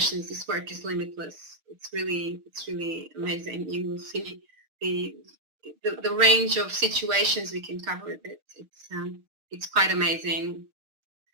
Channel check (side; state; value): left; late; 6.5 ms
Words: This work is limitless. It's really amazing. You will see the range of situations we can cover with it. It's quite amazing.